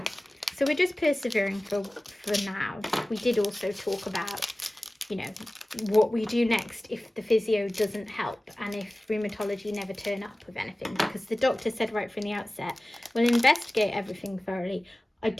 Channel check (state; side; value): normal; both; correlation 0.97